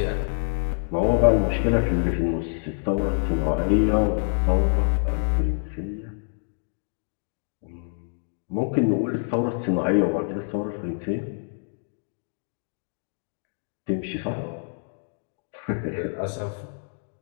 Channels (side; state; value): right; silent; digital silence